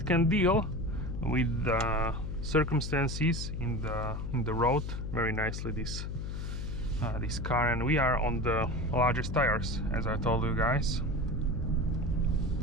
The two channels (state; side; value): noise; left; hum, 4 dB below the sound